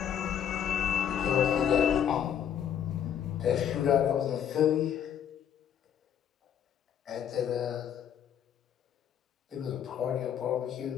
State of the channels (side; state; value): right; quieter; 9.2 dB